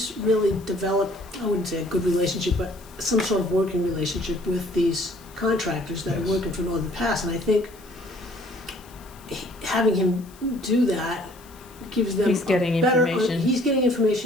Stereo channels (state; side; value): noise; left; hiss, 24 dB below the sound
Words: really developed, I wouldn't say a good relationship, but some sort of working relationship with these contractors that Yes. are working for Northern Pass. And I think having him do that gives them He's getting a better, information. he's getting